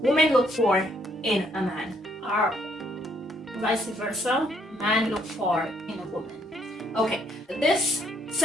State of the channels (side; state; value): both; normal; correlation 0.69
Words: women look for in a man. Or vice versa, man look for in a woman. Okay, this